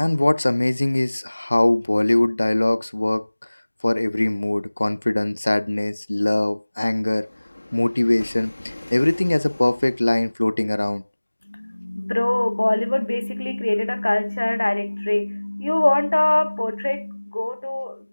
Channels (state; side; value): inverted; both; correlation -1.00